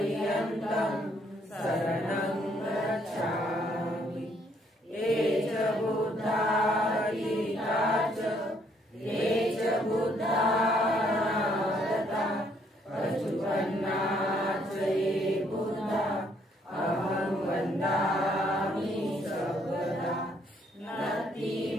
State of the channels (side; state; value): both; normal; correlation 0.68